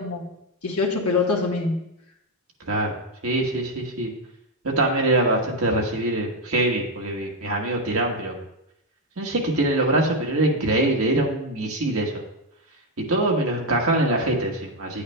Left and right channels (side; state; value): both; normal; correlation 0.05